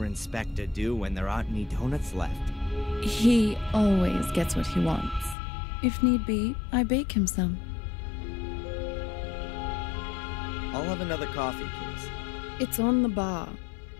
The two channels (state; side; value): drops out; right; at 5.4 s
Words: inspector do when there aren't any donuts left? He always gets what he wants. If need be, I bake him some. I'll have another coffee, please. It's on the bar.